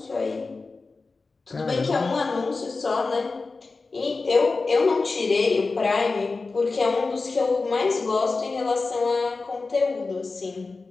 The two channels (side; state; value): right; quieter; 3.9 dB